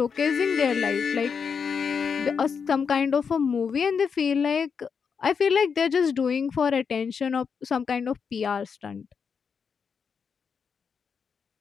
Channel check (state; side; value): quieter; right; 6.2 dB